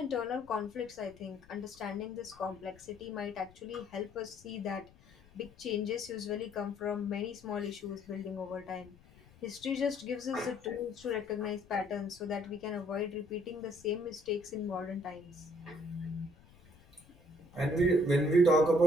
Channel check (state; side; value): noise; left; rumble, 25 dB below the sound